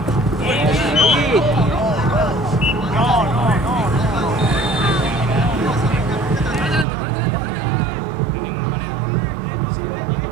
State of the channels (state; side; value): drops out; left; at 6.9 s